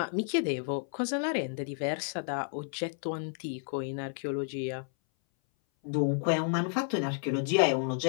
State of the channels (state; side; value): silent; right; 57 dB below the other